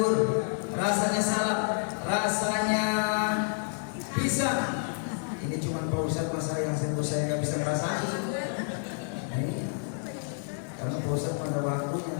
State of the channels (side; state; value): right; silent; 58 dB below the other